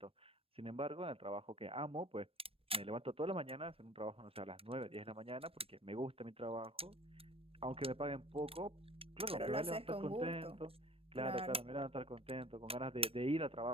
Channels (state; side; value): late; left; 0.28 ms